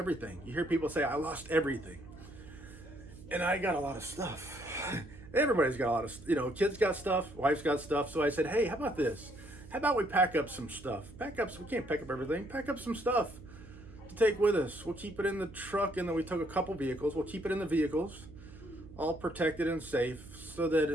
You hear people say, I lost everything. And I got a lot of stuff. Everybody's got a lot of, kids got stuff, wife's got stuff. So I said, hey, how about this? How about we pack up some stuff? We can't pack up everything. Pack up some stuff to take with us. We'll keep it in the truck, and then we took a couple vehicles. We'll keep it in the vehicles, all protected and safe, so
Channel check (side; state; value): right; noise; hum, 18 dB below the sound